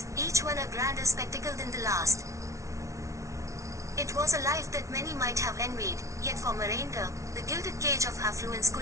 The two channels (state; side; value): late; left; 0.14 ms